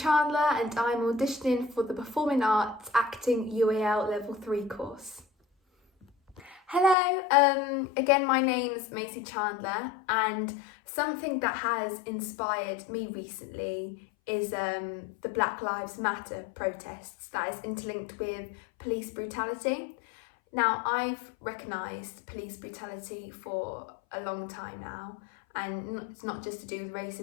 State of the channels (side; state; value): right; drops out; at 7.0 s